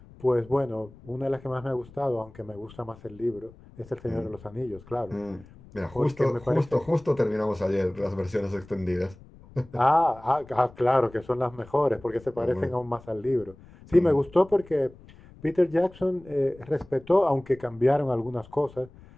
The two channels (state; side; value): noise; left; rumble, 22 dB below the sound